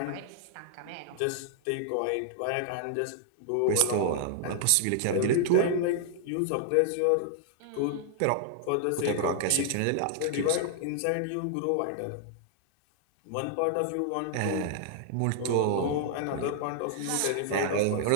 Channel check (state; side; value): different; both; correlation -0.01